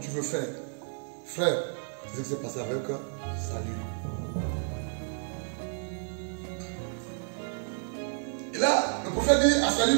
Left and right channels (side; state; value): left; silent; 57 dB below the other